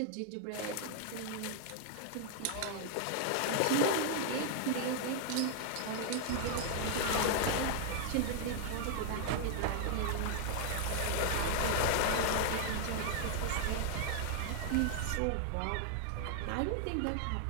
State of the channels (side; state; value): both; different; correlation 0.00